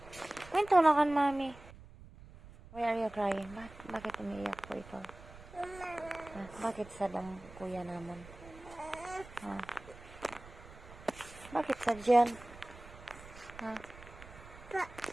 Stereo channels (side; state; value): right; noise; rumble, 18 dB below the sound